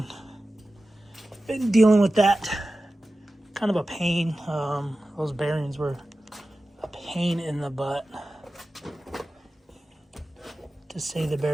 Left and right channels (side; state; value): both; normal; correlation 0.95